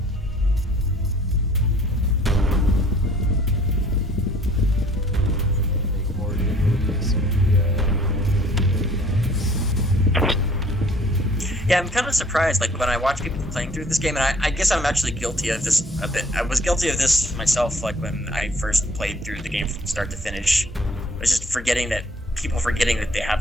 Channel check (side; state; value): both; normal; correlation 0.56